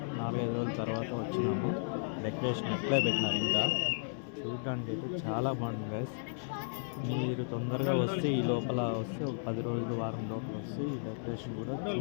4-5 రోజుల తర్వాత వచ్చినాము. డెకరేషన్ అట్లే పెట్టినారు. ఇంకా చూడడానికి అయితే చాలా బాగుంటుంది గైస్. మీరు తొందరగా వస్తే ఈ లోపల వస్తే ఒక 10 రోజులు వారం లోపల వస్తే ఈ డెకరేషన్ కూడా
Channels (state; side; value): silent; right; 55 dB below the other